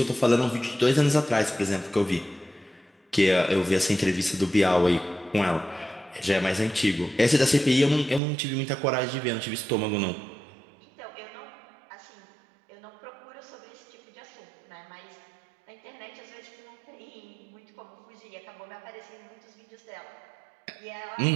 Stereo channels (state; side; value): drops out; left; at 8.2 s